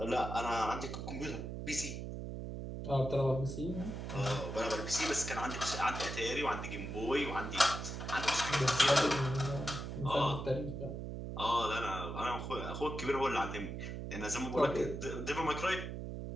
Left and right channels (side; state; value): right; noise; hum, 6 dB below the sound